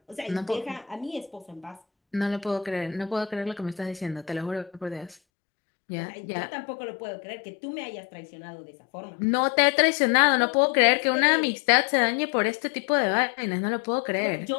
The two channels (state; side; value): drops out; right; at 5.2 s